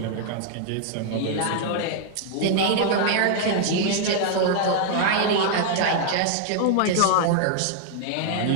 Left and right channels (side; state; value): both; different; correlation 0.00